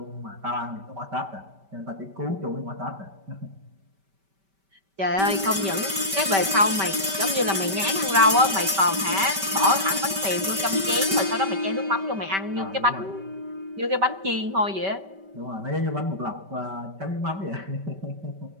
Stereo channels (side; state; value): left; late; 5.2 ms